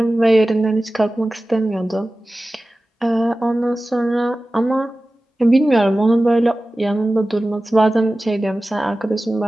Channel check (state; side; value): normal; both; correlation 0.96